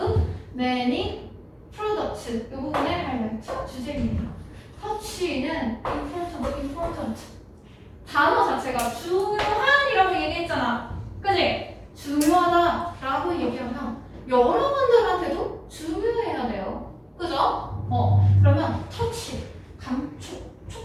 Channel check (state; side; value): identical; both; correlation 1.00